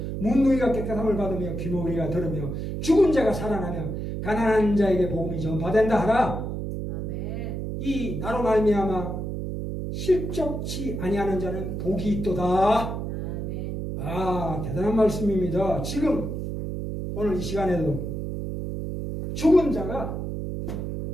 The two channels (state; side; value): noise; right; hum, 4 dB below the sound